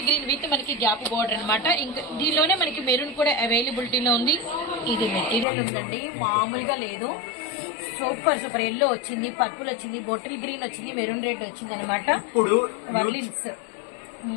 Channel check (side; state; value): right; drops out; at 5.5 s